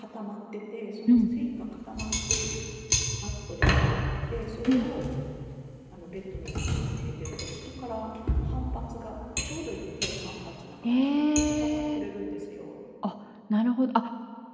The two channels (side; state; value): both; identical; correlation 1.00